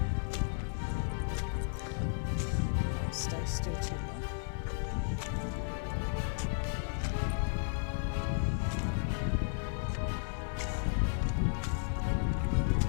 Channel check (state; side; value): silent; right; digital silence